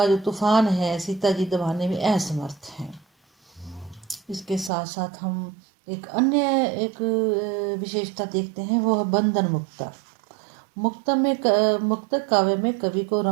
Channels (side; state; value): left; drops out; at 4.7 s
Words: जो तूफान है सीता जी दबाने में असमर्थ हैं। इसके साथ साथ हम एक विशेषता देखते हैं, वो है बंधन मुक्ता। मुक्तक काव्य में कवि को